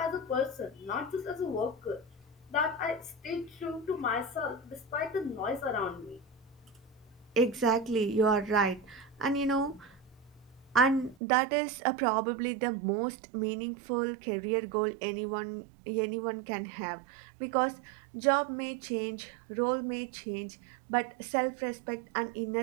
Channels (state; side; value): drops out; left; at 11.2 s